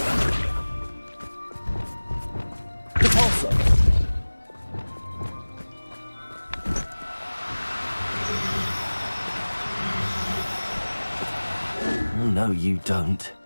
Repulsor. Oh, no, you don't.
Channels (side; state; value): both; inverted; correlation -1.00